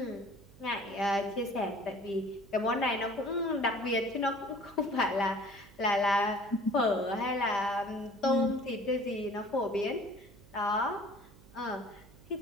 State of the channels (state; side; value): noise; right; hum, 23 dB below the sound